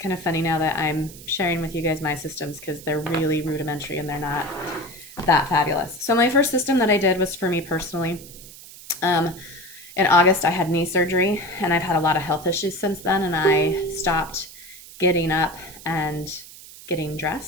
of funny now that I'm sharing with you guys my systems because they're really rudimentary and they're not that fabulous. So my first system that I did was for me personally. In August, I had knee surgery and I've had a lot of health issues since then, and I stopped getting up and getting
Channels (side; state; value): right; noise; hiss, 17 dB below the sound